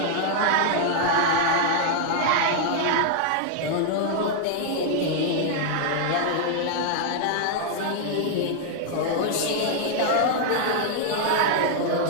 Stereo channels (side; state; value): both; different; correlation 0.00